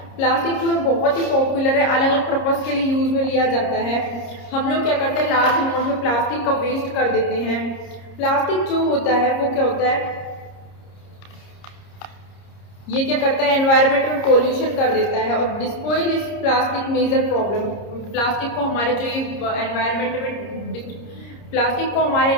प्लास्टिक जो है बहुत ही पॉपुलर है, अलग अलग पर्पज़ के लिए यूज में लिया जाता है। हम लोग क्या करते हैं, लार्ज अमाउंट में प्लास्टिक का वेस्ट कर देते हैं। प्लास्टिक जो होता है वो क्या होता है, ये क्या करता है, एनवायरनमेंट में पोल्यूशन कर देता है और disposal is plastic major problem. Plastic को हमारे जो ये एनवायरनमेंट में प्लास्टिक को हमारे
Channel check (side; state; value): right; late; 30 ms